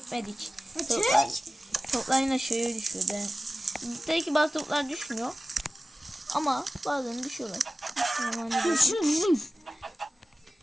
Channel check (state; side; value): normal; both; correlation 0.96